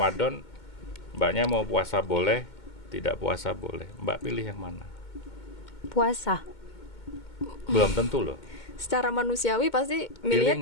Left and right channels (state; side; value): late; right; 2.2 ms